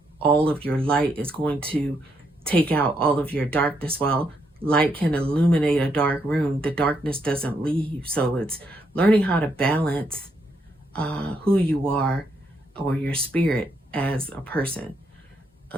all of your light is going to take out all of your darkness. While light can illuminate a dark room, the darkness doesn't leave. So it's learning how to balance who you are or your spirit as a person.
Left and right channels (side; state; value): both; normal; correlation 0.77